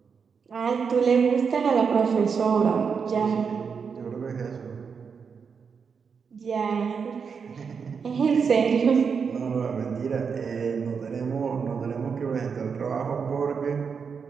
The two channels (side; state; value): left; quieter; 6.0 dB